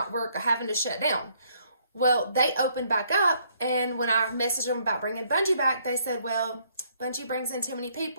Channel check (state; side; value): inverted; both; correlation -0.67